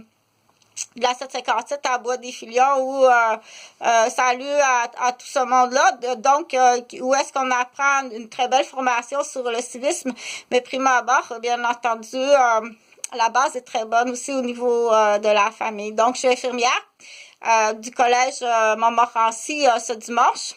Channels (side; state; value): both; identical; correlation 1.00